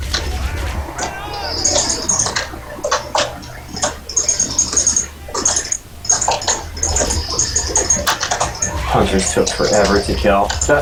Hunters took forever to kill.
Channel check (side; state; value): both; identical; correlation 1.00